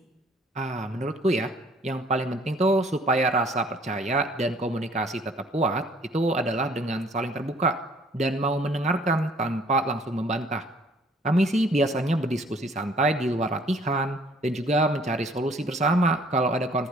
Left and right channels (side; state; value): both; normal; correlation 0.58